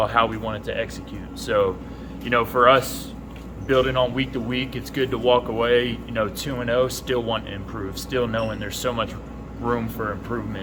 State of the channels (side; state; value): both; identical; correlation 1.00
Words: how we wanted to execute. So, you know, for us, building on week to week, it's good to walk away, you know, 2-0, still wanting to improve, still knowing there's so much room for